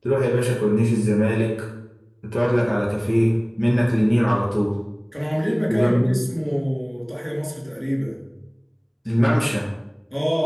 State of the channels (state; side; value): identical; both; correlation 1.00